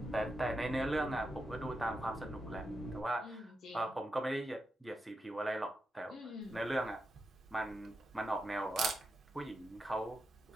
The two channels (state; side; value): normal; both; correlation 0.87